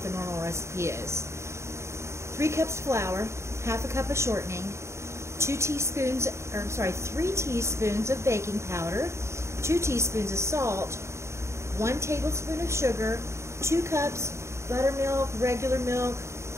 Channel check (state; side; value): late; left; 0.14 ms